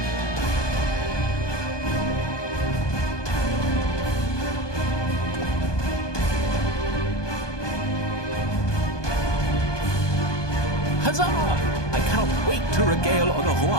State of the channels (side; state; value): right; late; 1.2 ms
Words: Huzzah! I cannot wait to regale